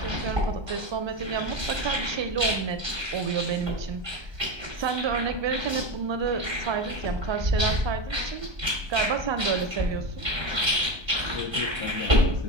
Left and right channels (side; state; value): left; late; 1.2 ms